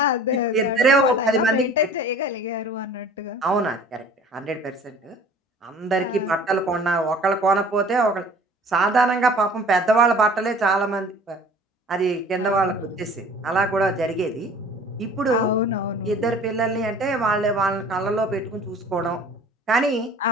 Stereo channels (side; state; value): both; normal; correlation 0.47